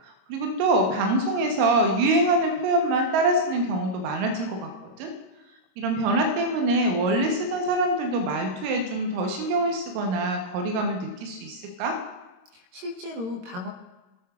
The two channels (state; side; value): late; left; 22 ms